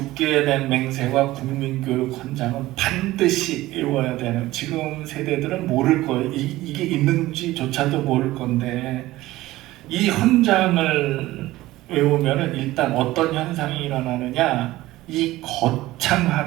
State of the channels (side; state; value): left; quieter; 17.1 dB